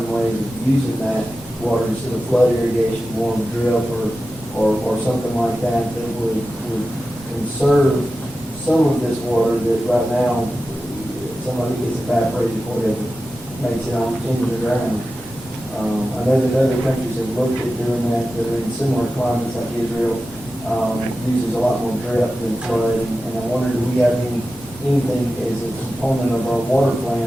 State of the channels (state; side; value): normal; both; correlation 0.93